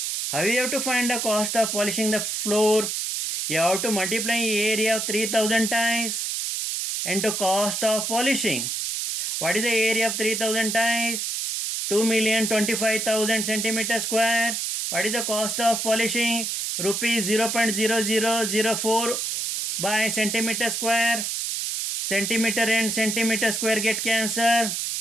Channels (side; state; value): right; noise; hiss, 2 dB below the sound